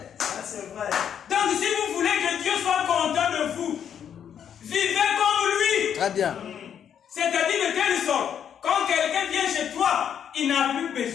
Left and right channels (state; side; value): quieter; right; 8.7 dB